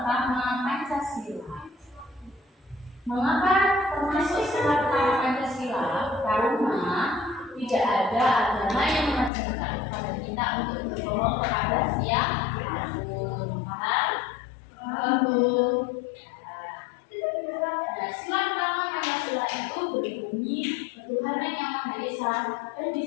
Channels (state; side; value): drops out; right; at 9.3 s